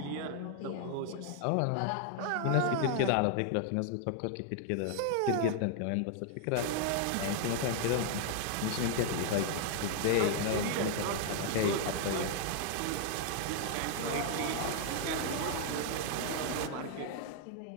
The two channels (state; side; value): different; both; correlation 0.00